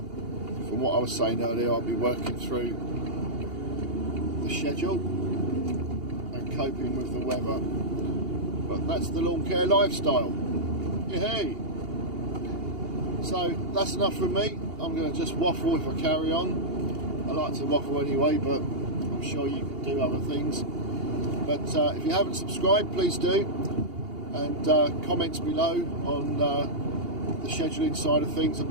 from what I was saying earlier, I'll be working through the schedule and coping with the weather. But that's the lawn care lifestyle. Yay! So that's enough from me. I'm going to just waffle if I carry on. I like to waffle anyway, but I'm sure you can do other things. But if you haven't subscribed, please do. And comments below on the scheduling side of things. I'd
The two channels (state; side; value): late; left; 2.8 ms